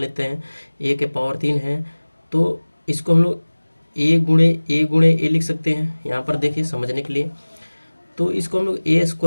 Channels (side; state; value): both; inverted; correlation -1.00